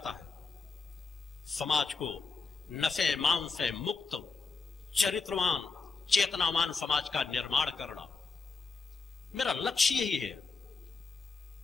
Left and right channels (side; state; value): right; quieter; 4.6 dB